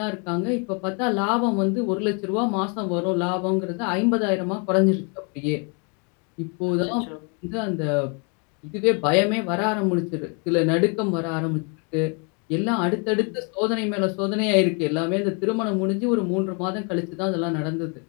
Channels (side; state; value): right; quieter; 36.3 dB